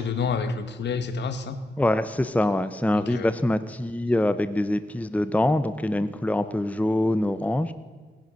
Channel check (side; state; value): both; normal; correlation 0.89